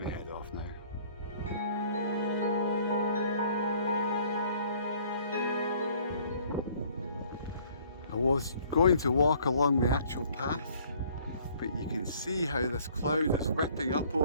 to head off now. I was going to walk along the actual path, but you can see how this cloud is whipping up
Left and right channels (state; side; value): inverted; both; correlation -0.57